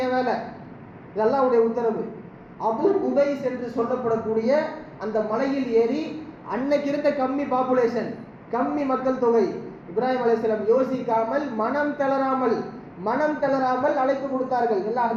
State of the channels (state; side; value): identical; both; correlation 1.00